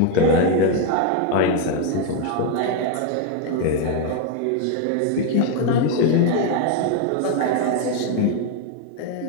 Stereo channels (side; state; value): both; different; correlation 0.01